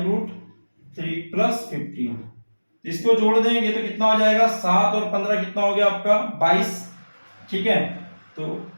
प्लस 15, इसको जोड़ देंगे तो कितना हो जाएगा 7 और 15 कितना हो गया आपका 22। ठीक है, तो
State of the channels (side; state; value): both; inverted; correlation -1.00